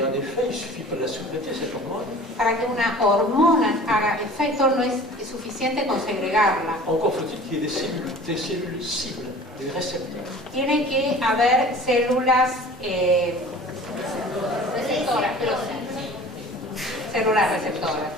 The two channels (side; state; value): both; normal; correlation 0.44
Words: un effet, il ne suffit pas de la sécréter, cette hormone. Para que una hormona haga efecto no es suficiente con segregarla. Encore faut-il qu'il y ait des cellules cibles, des récepteurs. Tiene que haber células receptoras, células receptoras.